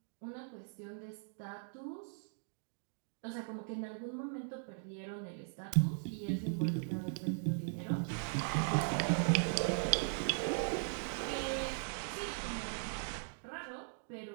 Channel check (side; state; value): left; silent; digital silence